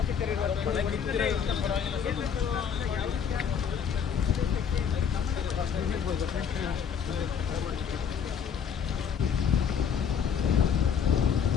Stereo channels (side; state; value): right; quieter; 7.4 dB